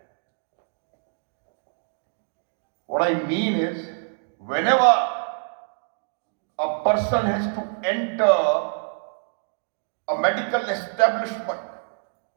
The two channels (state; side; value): silent; left; 61 dB below the other